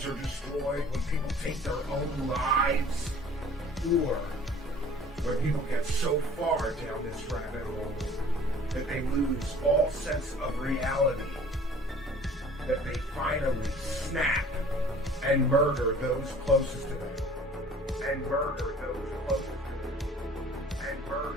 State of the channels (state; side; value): normal; both; correlation 0.50